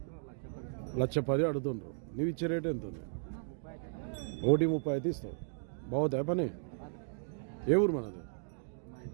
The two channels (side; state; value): left; silent; digital silence